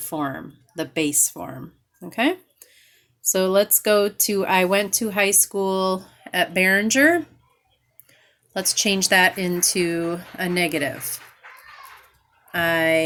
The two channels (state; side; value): identical; both; correlation 1.00